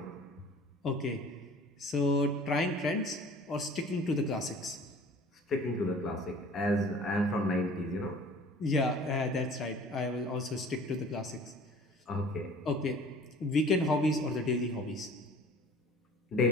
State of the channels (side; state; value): both; normal; correlation 0.47